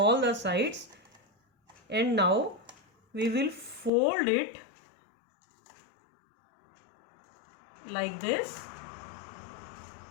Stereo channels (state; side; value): drops out; right; at 3.9 s